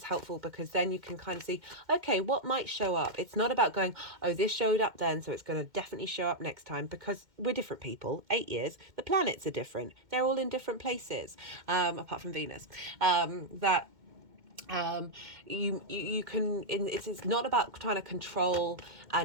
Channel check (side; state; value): left; late; 2.1 ms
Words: helpful because then you can kind of see, okay, what might show up. It's not about going, oh, this showed up then, so it's going to definitely show up next time, because we're different people. 8 years, the planets are different. They're all in different places, apart from Venus. You can, it's not about trying to control